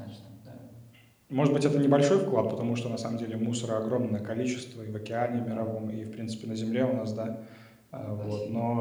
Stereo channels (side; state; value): both; identical; correlation 1.00